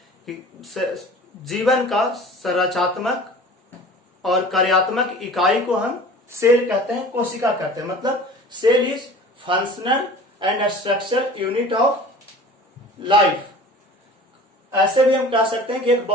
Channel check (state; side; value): normal; both; correlation 0.42